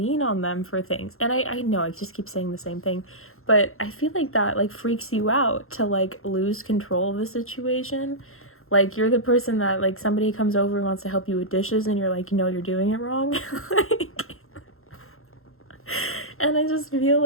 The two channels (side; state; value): right; late; 0.61 ms